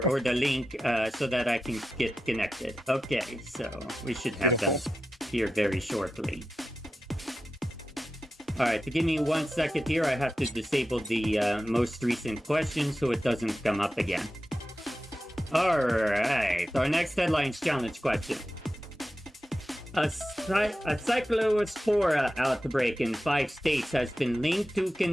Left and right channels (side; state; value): both; normal; correlation 0.92